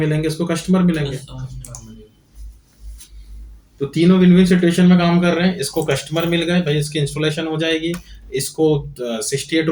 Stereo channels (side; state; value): both; identical; correlation 1.00